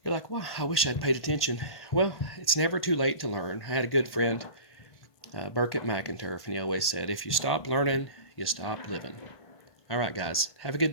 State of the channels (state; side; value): late; right; 1.5 ms